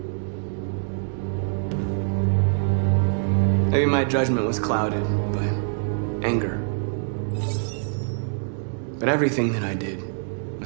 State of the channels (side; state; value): left; silent; digital silence